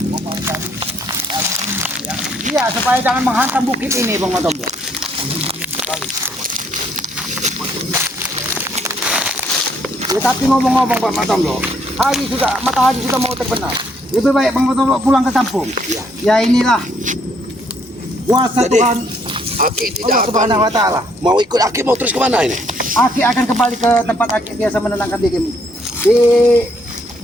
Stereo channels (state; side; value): normal; both; correlation 0.69